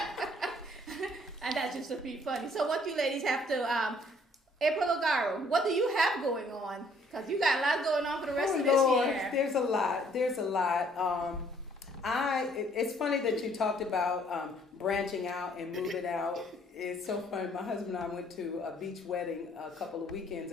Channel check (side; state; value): both; normal; correlation 0.62